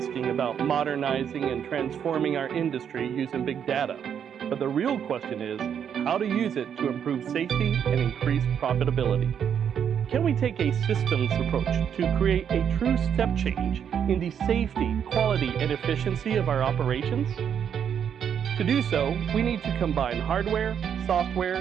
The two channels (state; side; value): quieter; left; 8.3 dB